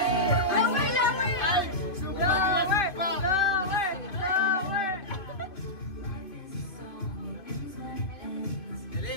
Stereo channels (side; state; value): right; late; 2.7 ms